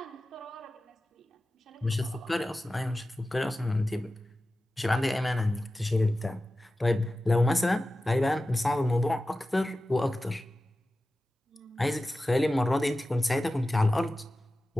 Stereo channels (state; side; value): normal; both; correlation 0.95